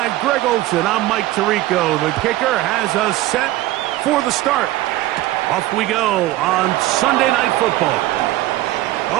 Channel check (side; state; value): left; quieter; 16.3 dB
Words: Greg Olsen, I'm Mike Tirico. The kicker has us set for the start. Off we go on Sunday Night Football.